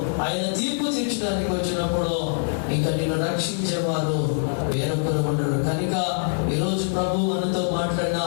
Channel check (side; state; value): right; silent; digital silence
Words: ఆయన తీర్పు తీర్చడానికి వచ్చినప్పుడు ఇంకా నిన్ను రక్షించేవారు వేరొకరు ఉండరు. కనుక ఈరోజు ప్రభు మనతో మాట్లాడిన